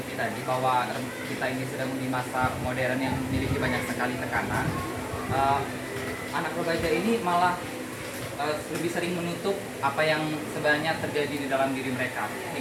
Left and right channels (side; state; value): both; identical; correlation 1.00